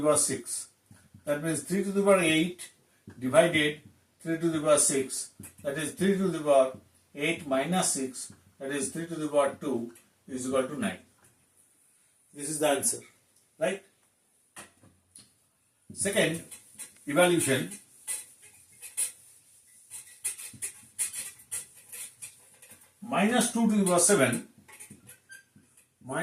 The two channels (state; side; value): identical; both; correlation 1.00